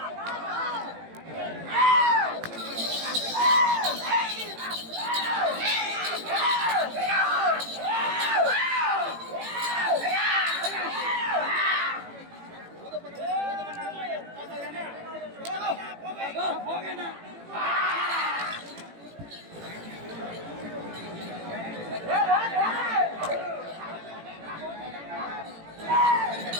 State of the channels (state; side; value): late; left; 18 ms